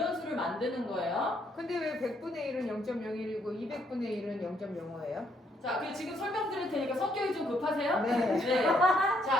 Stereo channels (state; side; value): normal; both; correlation 0.71